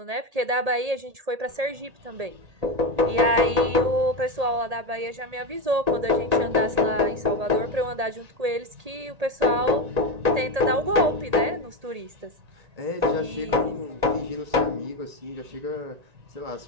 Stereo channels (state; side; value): late; left; 1.8 ms